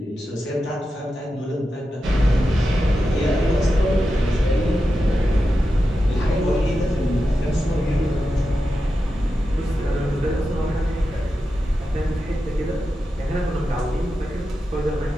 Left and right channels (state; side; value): normal; both; correlation 0.90